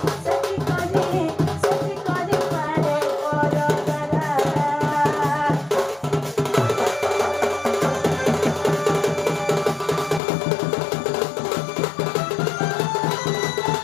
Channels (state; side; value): drops out; right; at 10.2 s